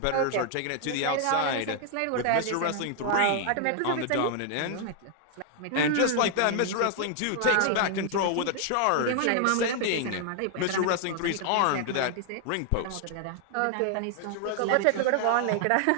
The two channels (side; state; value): both; different; correlation 0.00